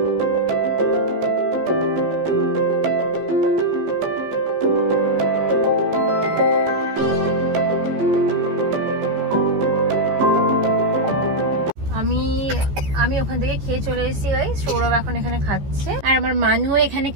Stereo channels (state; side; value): late; left; 15 ms